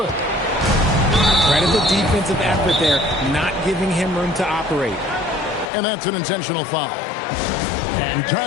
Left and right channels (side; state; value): right; drops out; at 5.7 s